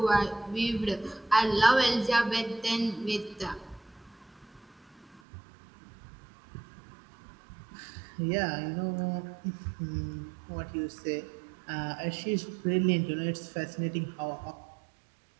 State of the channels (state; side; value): drops out; left; at 5.2 s